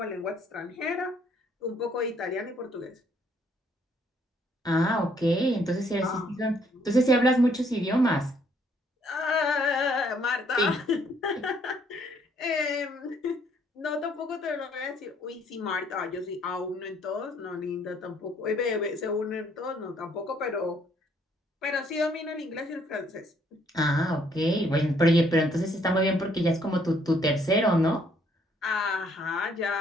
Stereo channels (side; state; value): both; normal; correlation 0.67